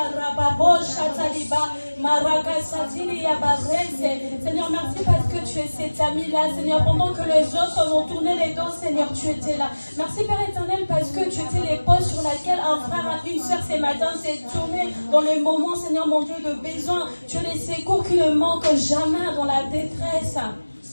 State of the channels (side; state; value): both; inverted; correlation -1.00